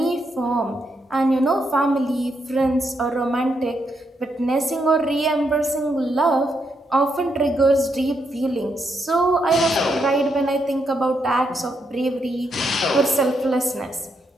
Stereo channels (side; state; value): both; normal; correlation 0.79